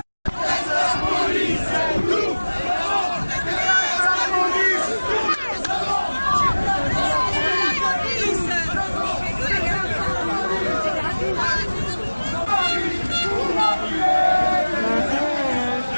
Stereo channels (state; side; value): inverted; both; correlation -1.00